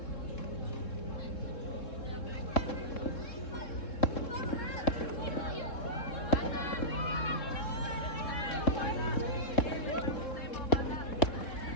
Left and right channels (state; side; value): late; right; 3.7 ms